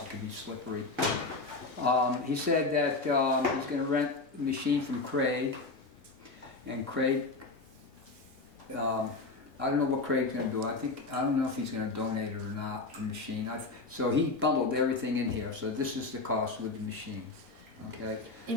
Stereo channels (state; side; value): quieter; right; 3.6 dB